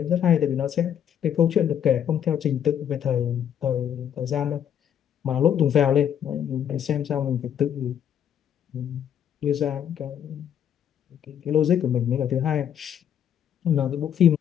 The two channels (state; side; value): quieter; right; 9.3 dB